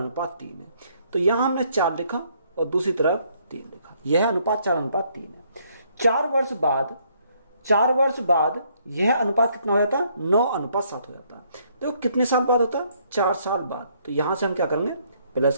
है। तो यहां हमने 4 लिखा और दूसरी तरफ 3 लिखा। यह अनुपात 4:3 है। 4 वर्ष बाद यह अनुपात कितना हो जाता है, 9:7 हो जाता है। देखो कितने साल बाद होता है, 4 साल बाद। तो यहां से हम क्या करेंगे, प्लस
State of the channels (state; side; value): inverted; both; correlation -0.68